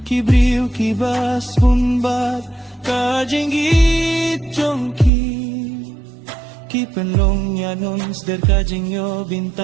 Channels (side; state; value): left; drops out; at 5.1 s